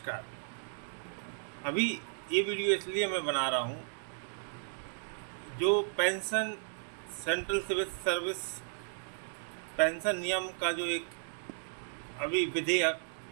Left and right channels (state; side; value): silent; left; digital silence